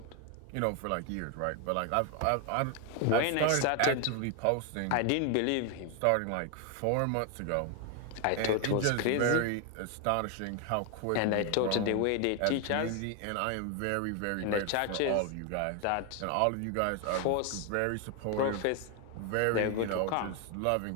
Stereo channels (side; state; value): both; different; correlation 0.01